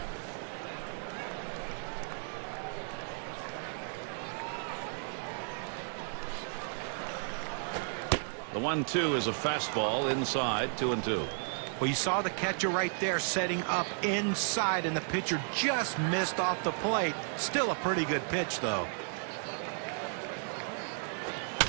The 1-2 is a fastball inside. 2-2. Well, you saw the catcher right there setting up inside, and the pitcher just missed off the plate. Still a pretty good pitch, though.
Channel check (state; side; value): silent; left; 55 dB below the other